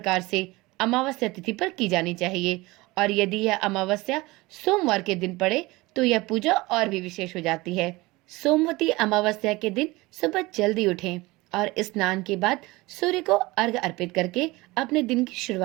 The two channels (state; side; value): quieter; left; 21.6 dB